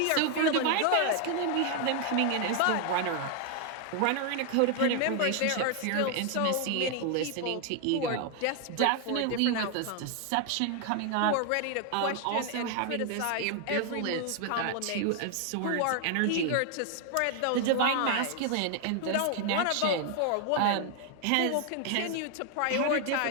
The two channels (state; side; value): different; both; correlation 0.00